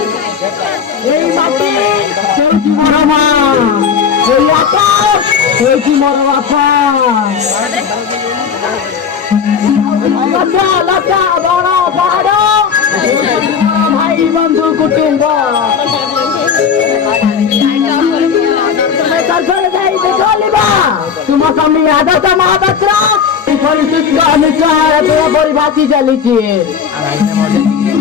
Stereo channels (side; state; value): right; quieter; 6.8 dB